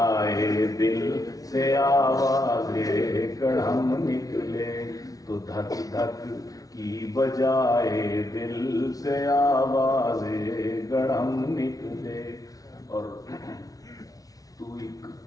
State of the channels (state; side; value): late; right; 0.18 ms